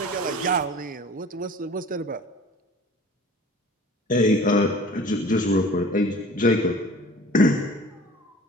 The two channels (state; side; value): normal; both; correlation 0.45